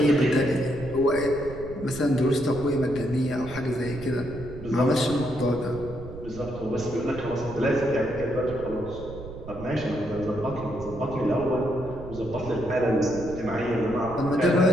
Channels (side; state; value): right; noise; rumble, 13 dB below the sound